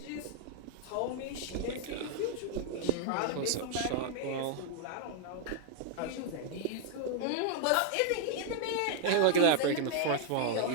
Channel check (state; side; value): different; both; correlation 0.00